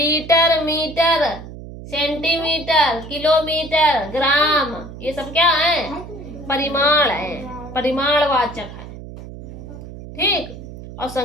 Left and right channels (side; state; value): right; noise; hum, 13 dB below the sound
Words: मीटर, सेंटीमीटर, किलोमीटर, ग्राम, ये सब क्या है? परिमाण है, परिमाणवाचक है। ठीक। और